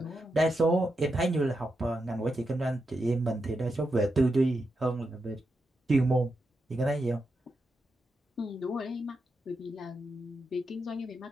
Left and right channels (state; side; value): normal; both; correlation 0.86